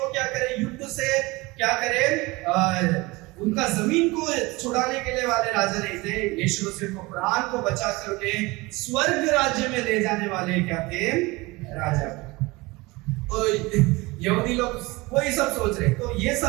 क्या करे, युद्ध से क्या करे, उनका जमीन को छुड़ाने के लिए वाले राजा नहीं थे। यीशु मसीह को प्राण को बचा करके स्वर्ग राज्य में ले जाने वाले क्या थे, राजा। तो यहूदी लोग वही सब सोच रहे, तो ये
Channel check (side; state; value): left; quieter; 22.9 dB